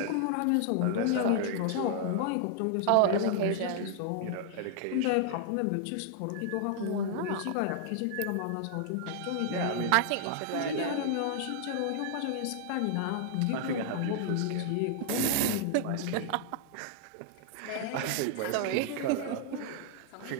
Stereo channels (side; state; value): both; different; correlation -0.01